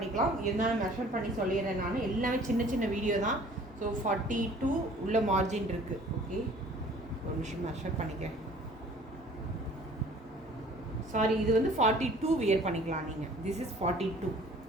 இருந்தாலும் மெஷர் பண்ணி சொல்லிடுறேன் நான். எல்லாமே சின்ன சின்ன வீடியோ தான். ஸோ 42 உள்ள மார்ஜின் இருக்குது. ஓகே, ஒரு நிமிஷம் மெஷர் பண்ணிக்கிறேன். சாரி, இது வந்து 42 வியர் பண்ணிக்கலாம் நீங்கள். This is 42.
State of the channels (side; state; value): both; normal; correlation 0.51